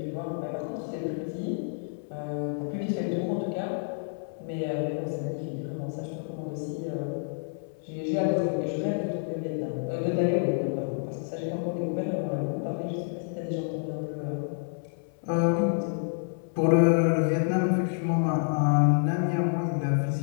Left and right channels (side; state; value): right; silent; 59 dB below the other